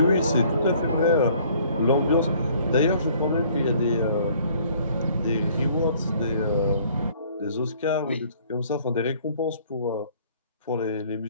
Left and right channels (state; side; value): inverted; both; correlation -0.58